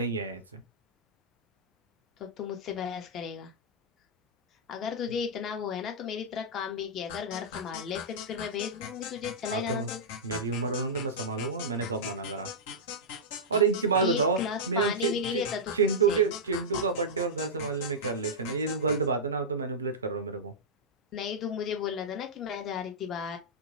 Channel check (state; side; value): normal; both; correlation -0.11